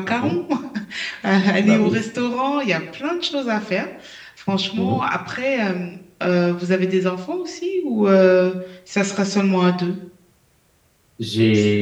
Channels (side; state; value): both; identical; correlation 1.00